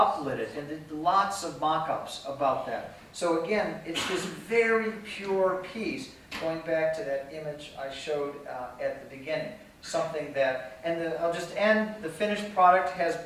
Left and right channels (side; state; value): both; identical; correlation 1.00